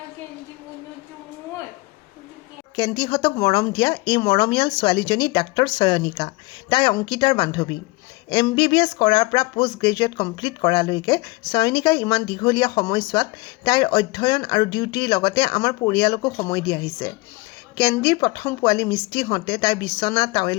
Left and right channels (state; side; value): quieter; right; 23.8 dB